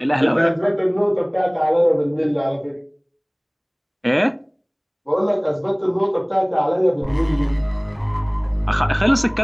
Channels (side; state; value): both; identical; correlation 1.00